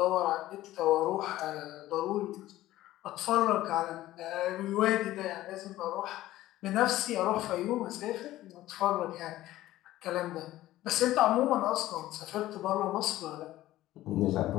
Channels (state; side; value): quieter; right; 15.3 dB